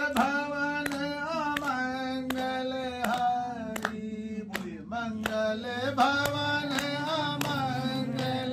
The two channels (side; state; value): both; identical; correlation 1.00